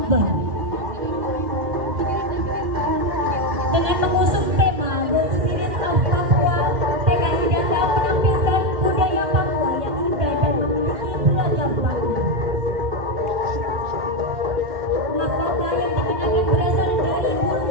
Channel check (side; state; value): left; late; 2.1 ms